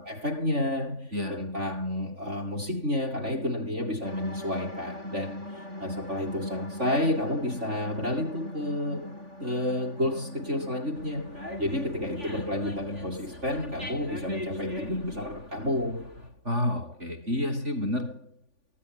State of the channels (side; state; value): left; late; 3.5 ms